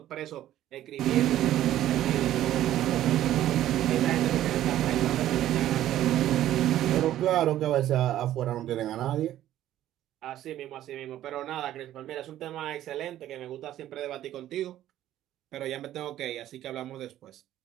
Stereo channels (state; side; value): quieter; left; 12.9 dB